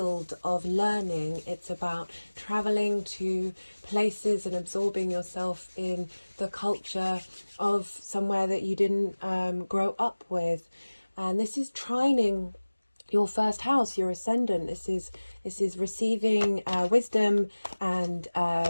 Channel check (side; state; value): both; inverted; correlation -1.00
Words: of learning. It's about traveling to places and absorbing yourself in the culture of somewhere that you didn't grow up with. And this is trining your 1st house, your Ascendant. This is receiving wisdom and